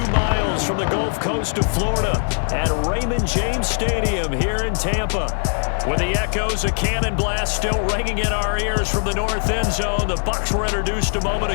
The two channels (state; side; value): silent; right; digital silence